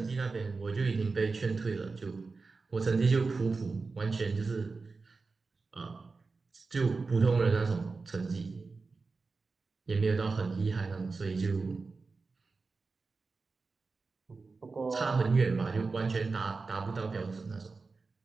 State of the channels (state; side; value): quieter; left; 4.2 dB